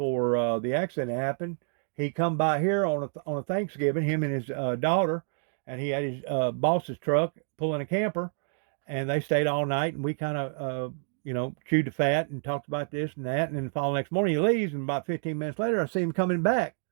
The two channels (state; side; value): silent; left; digital silence